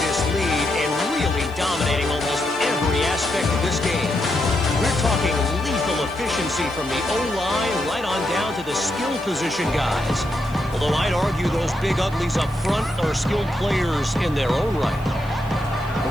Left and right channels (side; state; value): right; noise; hiss, 24 dB below the sound